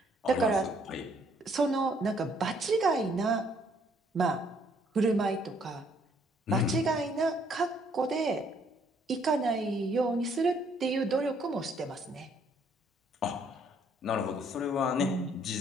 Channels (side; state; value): both; normal; correlation 0.66